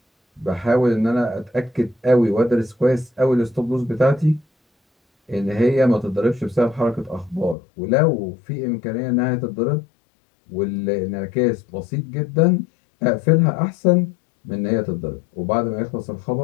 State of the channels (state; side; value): drops out; right; at 7.6 s